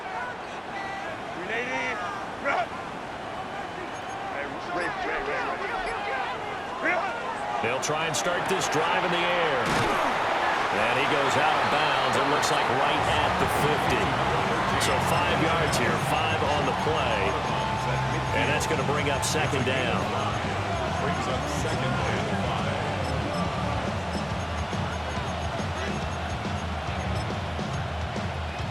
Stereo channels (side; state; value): both; identical; correlation 1.00